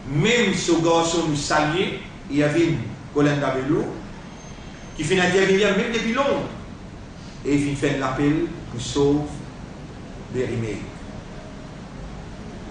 Même ce garçon nous saluait, il y avait Colin Davelou qui fait intervenir même depuis longtemps et il fait l'appel pour sauver les remèdes.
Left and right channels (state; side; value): identical; both; correlation 1.00